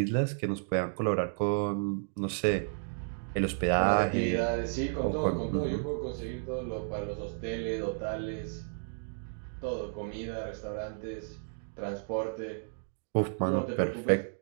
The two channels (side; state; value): left; silent; digital silence